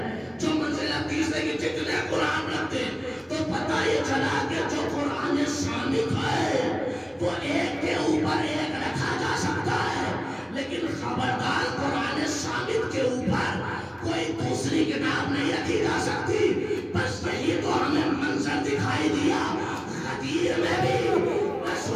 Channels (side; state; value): both; identical; correlation 1.00